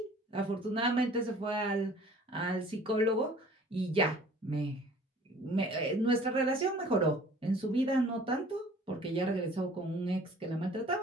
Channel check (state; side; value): normal; both; correlation 0.51